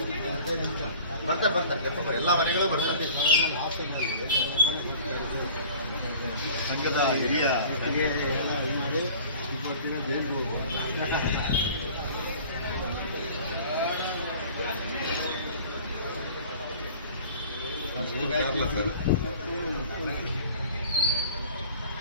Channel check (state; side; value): inverted; both; correlation -0.45